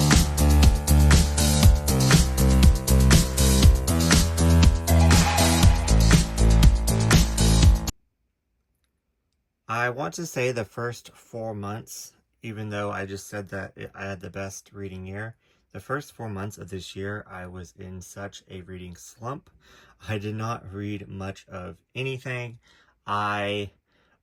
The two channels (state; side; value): identical; both; correlation 1.00